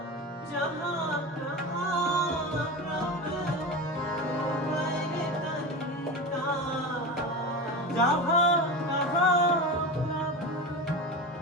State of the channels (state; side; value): normal; both; correlation 0.25